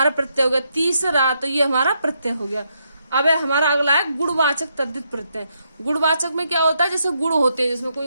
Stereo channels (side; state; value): both; inverted; correlation -0.79